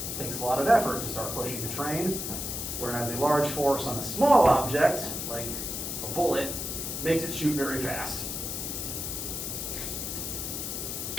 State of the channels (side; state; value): left; noise; hiss, 4 dB below the sound